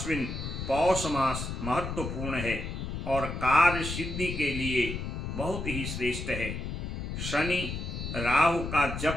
पौष मास महत्वपूर्ण है और कार्य सिद्धि के लिए बहुत ही श्रेष्ठ है। शनि राहु का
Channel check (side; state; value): left; noise; rumble, 5 dB below the sound